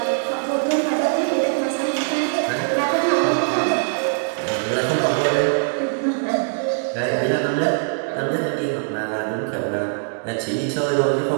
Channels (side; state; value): left; silent; digital silence